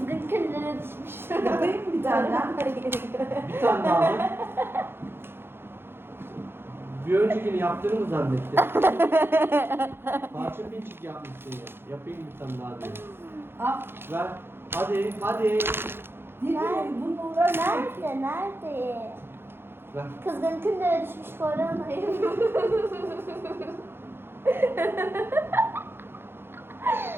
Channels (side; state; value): left; late; 0.11 ms